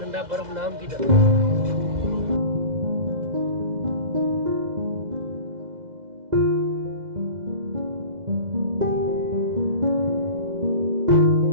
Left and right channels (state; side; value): late; left; 2.0 ms